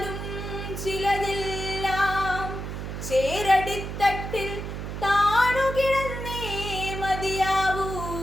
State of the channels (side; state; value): right; noise; hum, 6 dB below the sound